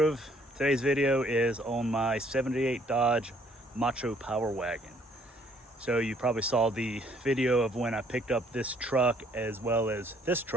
Today's video is on my 78 Dodge MACHO Power Wagon. So you probably saw the video of when I picked up this truck as well as this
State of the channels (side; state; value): both; normal; correlation 0.64